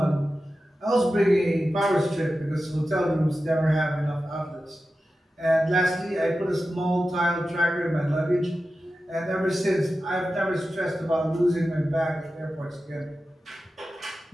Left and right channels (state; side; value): normal; both; correlation 0.93